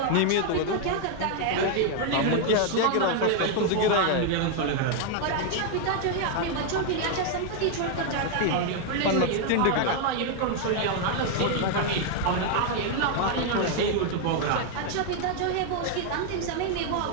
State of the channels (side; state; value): both; different; correlation 0.00